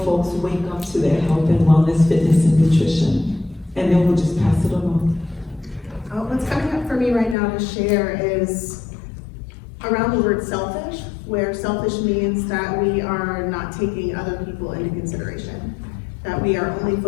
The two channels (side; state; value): right; drops out; at 7.4 s